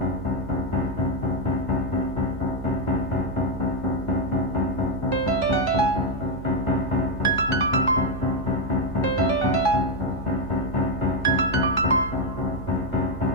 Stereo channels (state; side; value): noise; right; hum, 11 dB below the sound